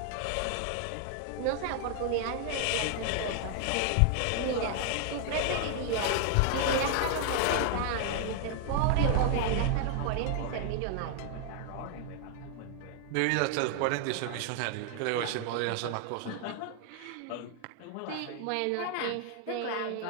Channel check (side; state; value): both; different; correlation 0.00